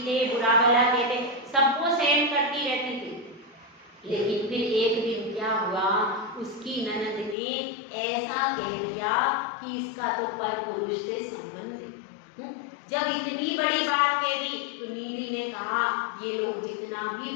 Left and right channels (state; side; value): drops out; right; at 7.4 s